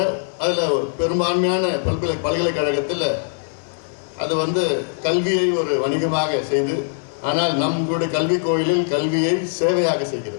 அதில் பெரும்பான்மையான பல்கலைக்கழகத்தில் அது கல்வியை ஒரு வணிகமாக செய்து, ஆனால் நம்மளுடைய கல்வி கோயிலில் கல்வியை சேவையாக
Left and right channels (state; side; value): silent; right; 63 dB below the other